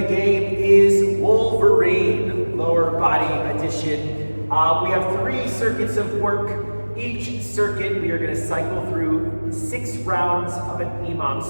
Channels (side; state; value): both; inverted; correlation -1.00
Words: game is Wolverine, lower body edition. We have 3 circuits of work. Each circuit, we are going to cycle through 6 rounds of an imam